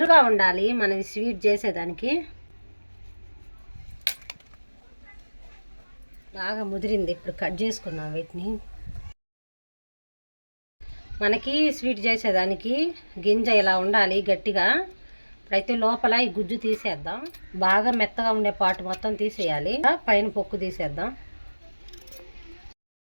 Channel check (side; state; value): both; inverted; correlation -1.00